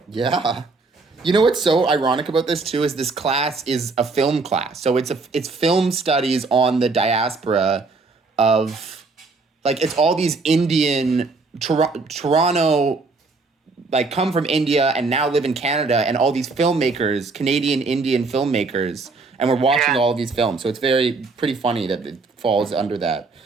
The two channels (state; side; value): quieter; left; 3.9 dB